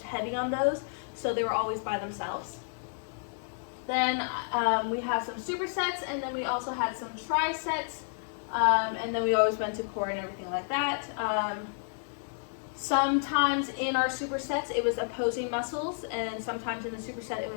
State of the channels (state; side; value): silent; right; 57 dB below the other